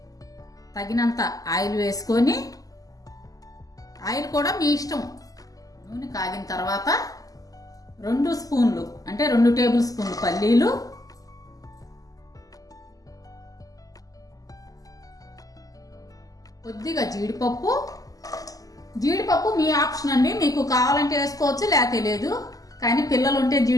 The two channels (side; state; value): right; late; 0.17 ms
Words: తగినంత ఆయిల్ వేసుకొని, ఆయిల్ కూడా మీ ఇష్టం. నూనె కాగిన తర్వాత 2 స్పూన్లు అంటే 2 టేబుల్ స్పూన్లు పల్లీలు, కొద్దిగా జీడిపప్పు. జీడిపప్పు మీ ఆప్షన్ అండి. మీకు కావాలంటే వేసుకోవచ్చు, లేకపోతే లేదు. కానీ పిల్లలు ఉంటే